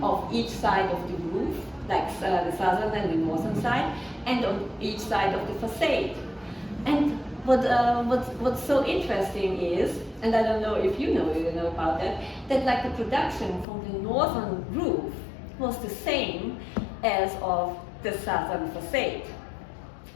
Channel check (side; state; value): right; drops out; at 13.7 s